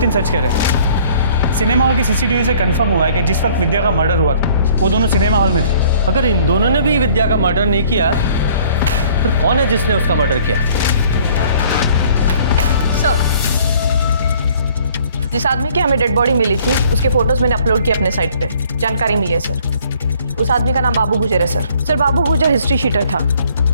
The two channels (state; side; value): inverted; both; correlation -0.56